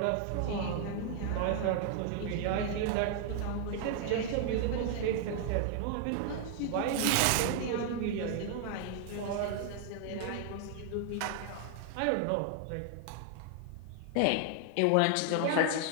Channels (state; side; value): different; both; correlation 0.00